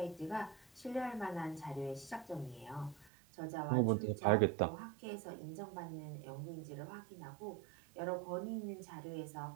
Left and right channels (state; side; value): drops out; left; at 3.1 s